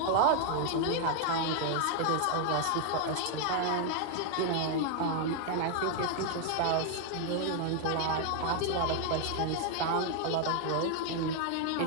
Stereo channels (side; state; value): both; different; correlation 0.00